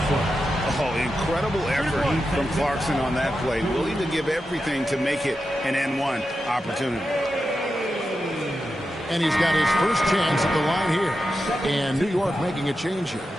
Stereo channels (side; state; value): both; normal; correlation 0.89